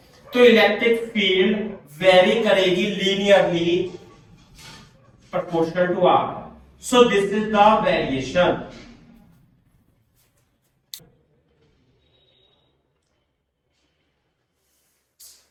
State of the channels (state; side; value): identical; both; correlation 1.00